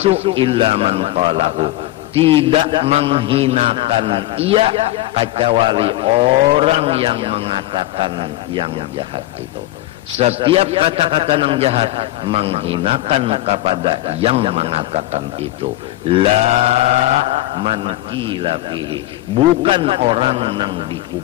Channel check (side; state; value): right; quieter; 15.9 dB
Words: illa man qalahu tidak menghinakan ia kecuali orang yang mengatakan yang jahat itu. Setiap kata-kata yang jahat menghinakan kepada yang mengatakan itu. La man qila fihi, bukan orang yang